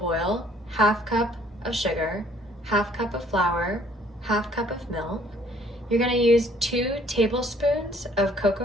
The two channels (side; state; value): both; normal; correlation 0.60